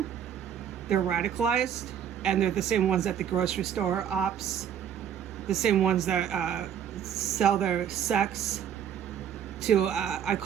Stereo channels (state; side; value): quieter; left; 9.0 dB